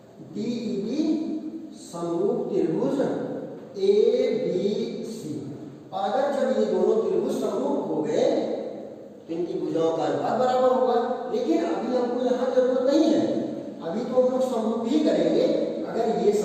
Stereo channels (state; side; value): identical; both; correlation 1.00